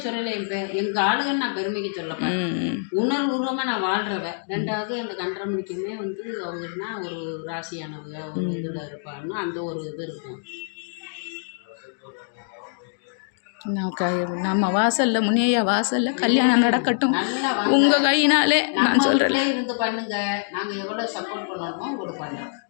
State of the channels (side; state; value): right; silent; digital silence